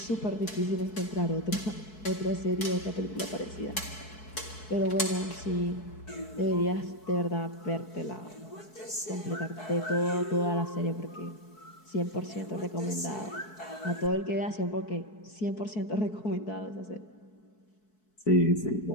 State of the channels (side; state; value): right; late; 4.6 ms